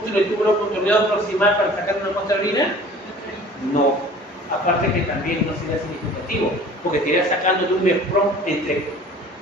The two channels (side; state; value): both; normal; correlation 0.46